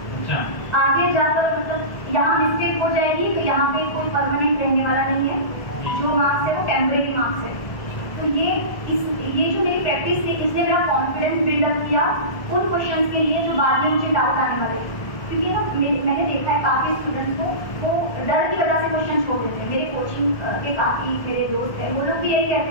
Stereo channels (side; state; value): right; late; 1.5 ms